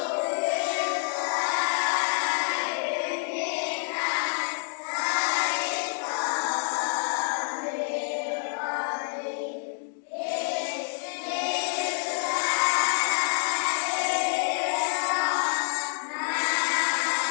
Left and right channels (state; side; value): silent; right; digital silence